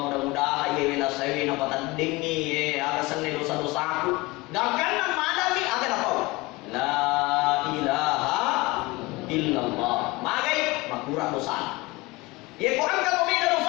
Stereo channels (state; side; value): quieter; right; 22.6 dB